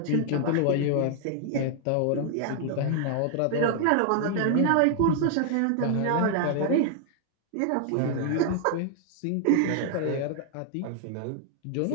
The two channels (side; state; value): both; different; correlation 0.00